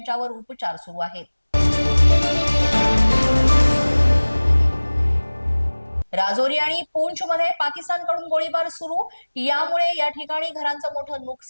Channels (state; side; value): inverted; both; correlation -1.00